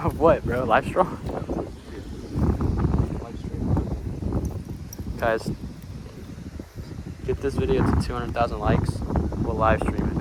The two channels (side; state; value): both; identical; correlation 1.00